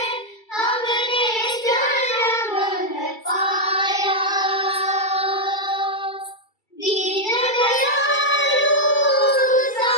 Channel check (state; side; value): late; right; 2.3 ms